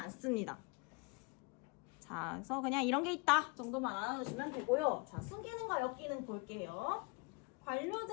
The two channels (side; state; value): right; quieter; 28.8 dB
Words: 자, 그래서 그냥 이런 게 있다 정도만 알아두시면 되고요. 자, 숨기능과 역기능 볼게요.